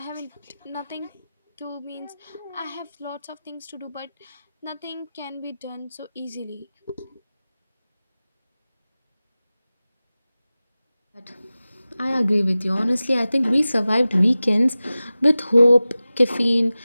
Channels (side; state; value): both; inverted; correlation -0.96